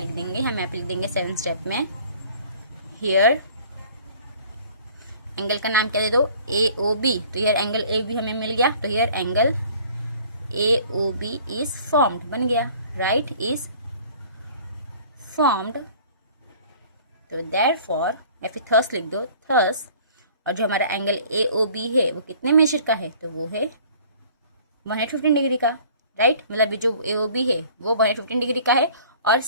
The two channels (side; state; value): both; inverted; correlation -0.51